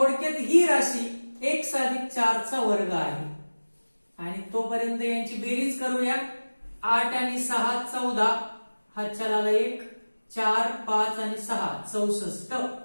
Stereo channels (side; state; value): both; inverted; correlation -1.00